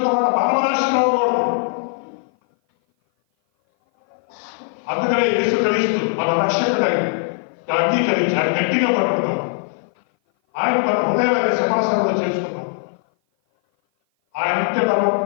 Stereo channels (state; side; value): silent; right; 57 dB below the other